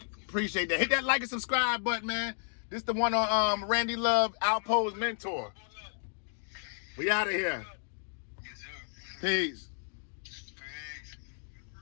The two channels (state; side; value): silent; right; digital silence